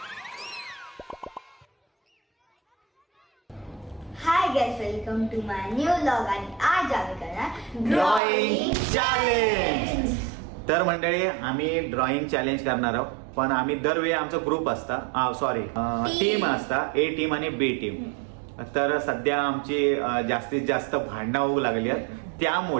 Hi guys, welcome to my new vlog आणि आज आम्ही करणार ड्रॉइंग चॅलेंज. तर मंडळी आम्ही ड्रॉइंग चॅलेंज करणार आहोत. पण आम्ही दरवेळी आमचा ग्रुप असता सॉरी टीम असता ए टीम आणि बी टीम. तर सध्या आमची जास्तीत जास्त भांडणं होऊ लागली आहेत.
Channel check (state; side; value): drops out; left; at 8.2 s